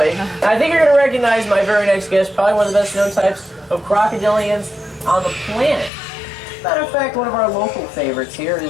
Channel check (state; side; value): drops out; right; at 5.9 s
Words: I think you're going to recognize my very next guest, probably one of the best known types of crocodilians on the planet. Matter of fact, one of our local favorites here